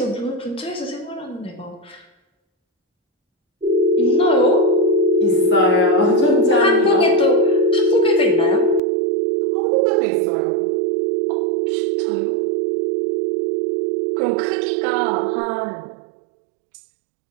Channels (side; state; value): left; drops out; at 8.8 s